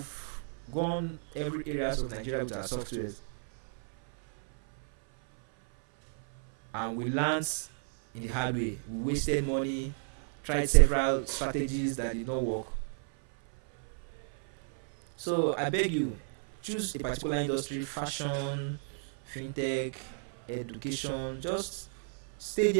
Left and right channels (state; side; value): silent; left; 56 dB below the other